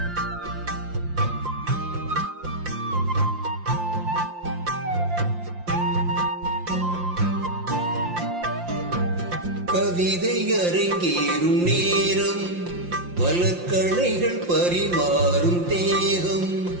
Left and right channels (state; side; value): late; left; 5.7 ms